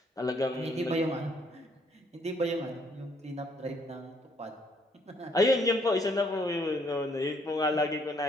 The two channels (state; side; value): normal; both; correlation 0.67